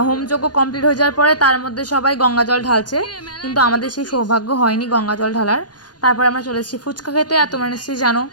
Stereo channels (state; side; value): late; right; 0.69 ms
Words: হোমযজ্ঞ কমপ্লিট হয়ে যাওয়ার পরে তার মধ্যে সবাই গঙ্গা জল ঢালছে, কিন্তু আমাদের সেই সৌভাগ্য হয়নি গঙ্গা জল ঢালার। তারপর আমরা চলে এসেছি ফুচকা খেতে। আর তোমরা নিশ্চয়ই জানো,